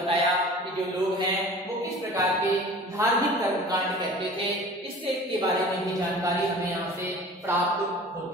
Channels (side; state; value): both; normal; correlation 0.42